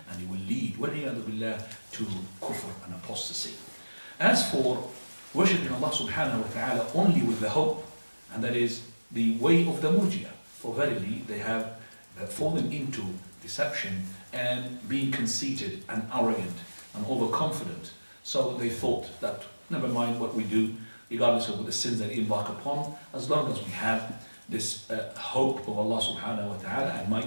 and he will lead, وَالْعِيَاذُ بِاللَّهِ, to kufr and apostasy. As for worshipping Allah subhanahu wa ta'ala only with the hope, and that is the way of the murji'ah, for verily they have fallen into deception and being conceited and arrogant and overconfident. So they thought that never mind what we do, regardless of the sins that we embark upon, as long as we have this hope of Allah subhanahu wa ta'ala, and my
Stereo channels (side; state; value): both; inverted; correlation -1.00